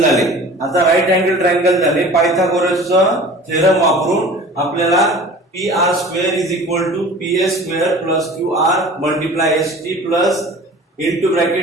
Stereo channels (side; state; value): both; normal; correlation 0.42